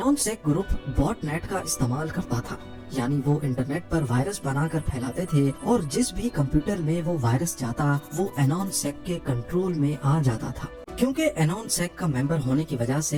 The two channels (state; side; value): identical; both; correlation 1.00